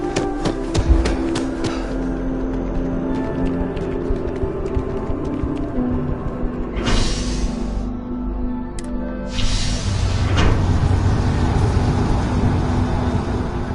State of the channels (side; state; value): both; identical; correlation 1.00